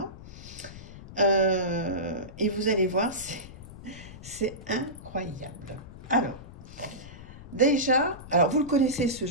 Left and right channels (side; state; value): left; noise; rumble, 15 dB below the sound